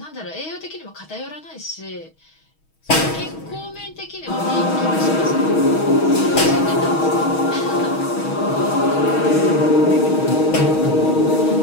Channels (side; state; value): right; late; 6.3 ms